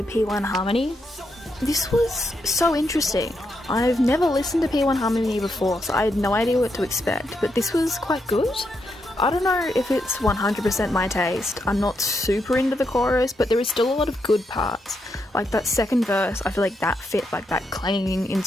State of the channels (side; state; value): both; normal; correlation 0.81